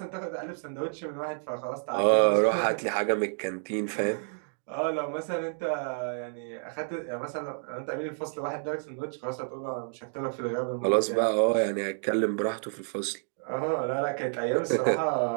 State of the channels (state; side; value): silent; left; digital silence